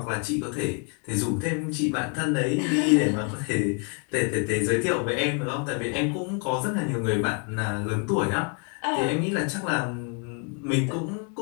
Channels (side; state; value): right; quieter; 35.7 dB